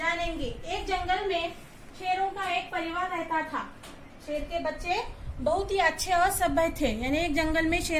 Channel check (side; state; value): both; identical; correlation 1.00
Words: एक जंगल में शेरों का एक परिवार रहता था। शेर के बच्चे बहुत ही अच्छे और सभ्य थे। यानी एक जंगल में